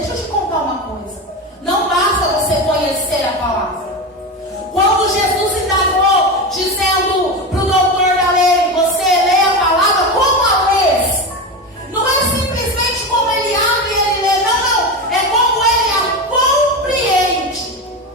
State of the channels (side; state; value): both; normal; correlation 0.20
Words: eu te contar uma coisa. Não basta você conhecer a palavra. Quando Jesus indagou, dizendo para o doutor da lei, você lê a palavra como a lês. Não é simplesmente como ele abre e ele lê. Não. É como ele a compreende.